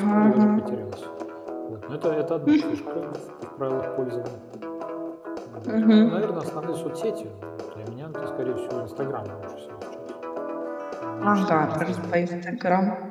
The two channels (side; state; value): both; identical; correlation 1.00